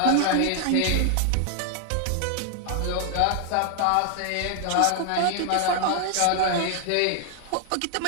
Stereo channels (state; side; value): different; both; correlation 0.00